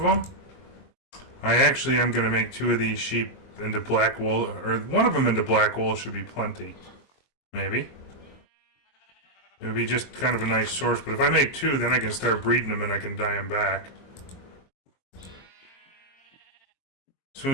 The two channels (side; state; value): right; late; 22 ms